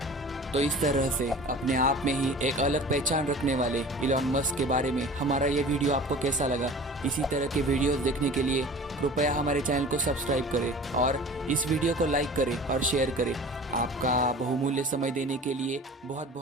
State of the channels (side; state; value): both; normal; correlation 0.41